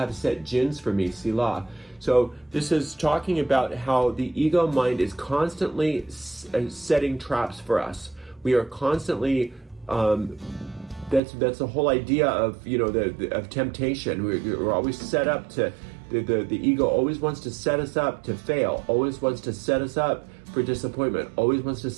set gins for me, Selah. So this is talking about how the ego mind is constantly setting traps for us. We are constantly, that's the whole idea of, of temptation. We're always set up to, the ego always wants to set us up to fail, always wants to set us up for disappointment, always wants to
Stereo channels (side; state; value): left; drops out; at 11.2 s